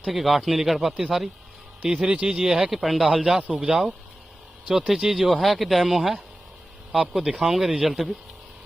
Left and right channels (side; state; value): both; normal; correlation 0.95